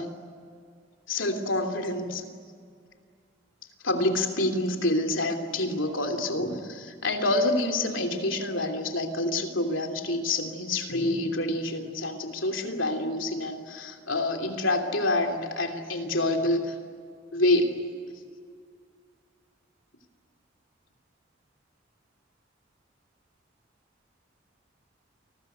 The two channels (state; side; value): normal; both; correlation 0.01